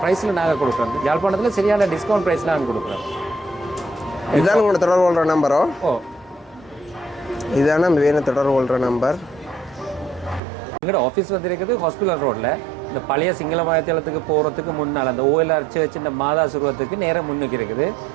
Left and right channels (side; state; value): left; drops out; at 10.4 s